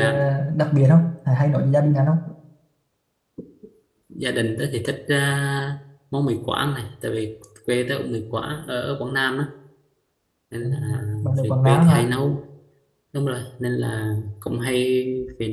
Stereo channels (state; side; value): identical; both; correlation 1.00